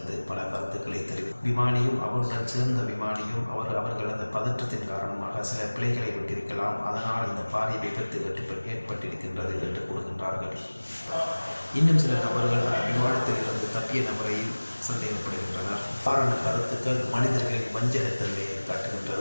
பல கருத்துக்களை விமானியும் அவருடன் சேர்ந்த விமானியும் அவர்கள் அந்த பதற்றத்தின் காரணமாக சில பிழைகளை விட்டிருக்கலாம், அதனால் இந்த பாரிய விபத்து ஏற்பட்டிருக்கின்றது என்று கூறுகின்றார்கள். இன்னும் சில நபர்கள் விமானத்தில் இருந்து தப்பிய நபரையும் சந்தேகப்படுகின்றனர். காரண கருத்துக்கள் மனிதர்களின் வஞ்சகத்தன்மையை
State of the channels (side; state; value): both; inverted; correlation -1.00